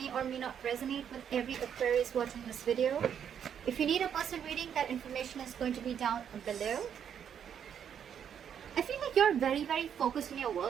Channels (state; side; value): quieter; left; 8.5 dB